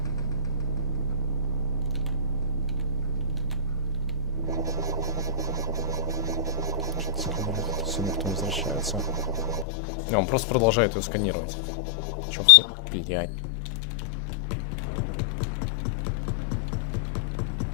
Сумка потом возвращается. Не, он просто продолжает ее сканировать. Чё, блядь.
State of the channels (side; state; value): right; drops out; at 9.7 s